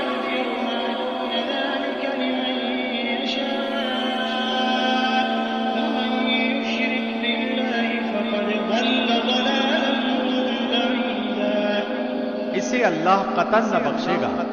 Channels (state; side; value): identical; both; correlation 1.00